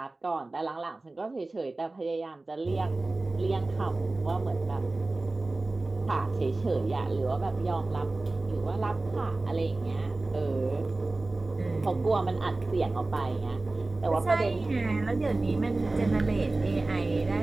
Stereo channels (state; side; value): quieter; left; 3.1 dB